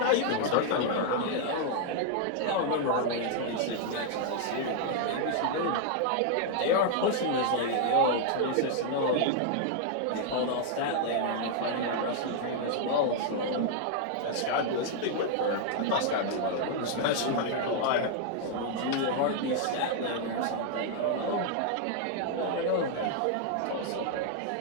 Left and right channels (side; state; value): both; different; correlation 0.00